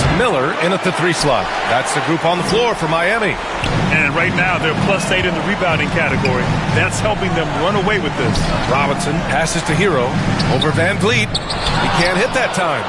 Miller in at the 3 slot. That's the group on the floor for Miami. And right now, they're +8 in the rebounding category. That's helping them run away with this. Robinson passes to Hero over Van Vliet. He can't hit that time.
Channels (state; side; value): identical; both; correlation 1.00